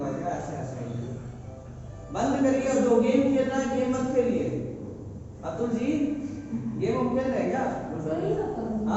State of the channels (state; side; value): identical; both; correlation 1.00